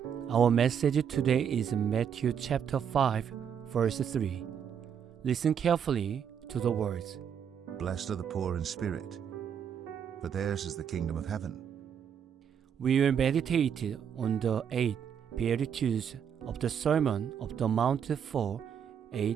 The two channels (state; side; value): quieter; left; 8.0 dB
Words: Our message today is Matthew chapter 5, verse 3. Listen carefully to the words. Blessed are the poor in spirit, for theirs is the kingdom of heaven. We will meditate on the 8 Beatitudes of the Sermon of the Mount for